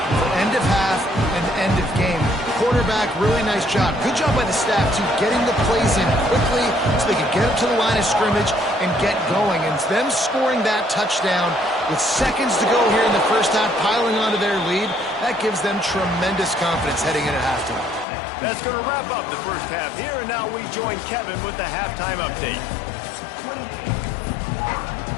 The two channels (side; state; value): right; drops out; at 18.1 s